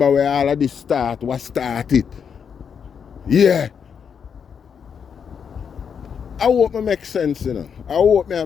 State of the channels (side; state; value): right; quieter; 7.0 dB